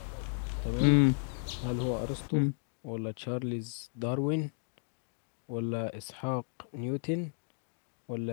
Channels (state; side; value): silent; right; digital silence